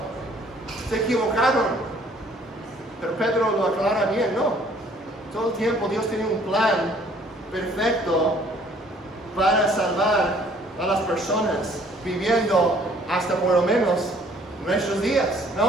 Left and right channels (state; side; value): normal; both; correlation 0.59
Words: Se equivocaron. Pero Pedro lo aclara bien, no. Todo el tiempo Dios tiene un plan perfecto para salvar a las personas viviendo hasta por lo menos nuestros días,